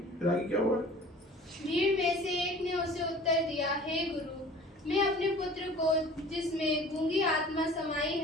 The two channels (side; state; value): both; normal; correlation 0.45